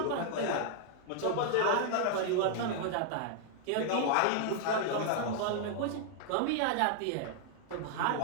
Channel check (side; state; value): both; different; correlation -0.01